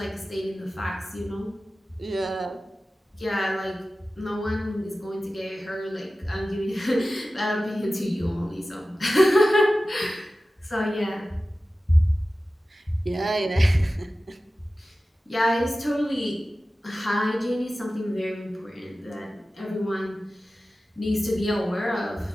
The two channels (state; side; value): normal; both; correlation 0.95